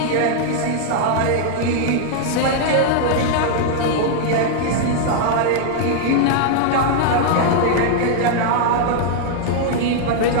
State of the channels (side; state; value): both; different; correlation -0.01